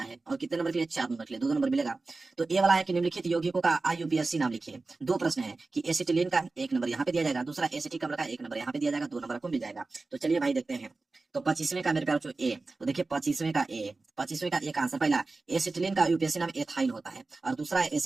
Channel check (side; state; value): left; quieter; 3.6 dB